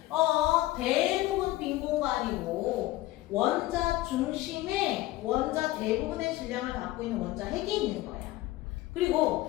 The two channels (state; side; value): quieter; right; 17.0 dB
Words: 대부분 빈 공간이고 원자 중심에 원자 대부분의 질량을 갖고 있는 원자 핵이 있는 거야.